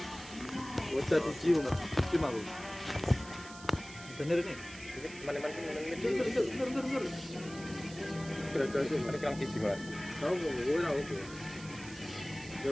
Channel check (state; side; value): noise; right; hiss, 16 dB below the sound